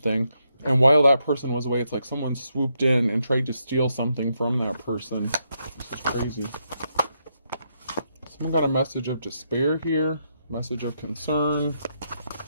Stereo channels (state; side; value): inverted; both; correlation -0.80